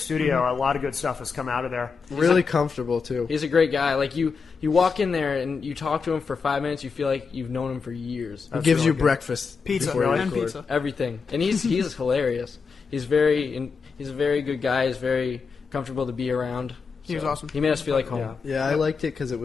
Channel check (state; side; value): quieter; right; 5.2 dB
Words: A lot of good stuff has come out of there. Really comfortable too. He's a great guy. Like you walk in there and you talk to him for 5 minutes, you feel like you've known him for years. He That's gives really you good. breakfast, Pizza before you and record. pizza. Everything, and he's hilarious. He's a very good guy. He's very comfortable to be around. He was awesome. He made us feel like home. Yeah. Yeah, I liked it because it